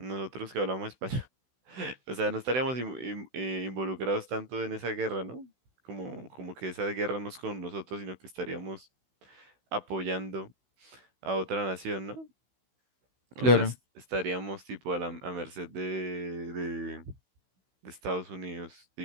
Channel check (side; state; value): left; late; 16 ms